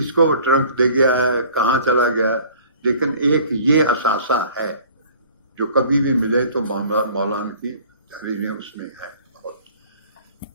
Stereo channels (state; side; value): inverted; both; correlation -0.49